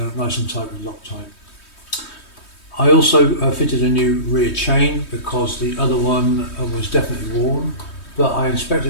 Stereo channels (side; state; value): right; late; 3.2 ms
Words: nice and tight with Loctite. I also fitted a new rear chain because the other one was definitely worn, but I